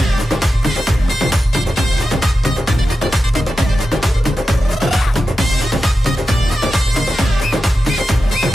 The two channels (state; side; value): normal; both; correlation 0.91